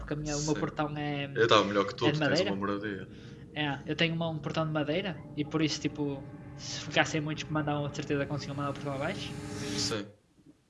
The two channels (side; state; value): both; identical; correlation 1.00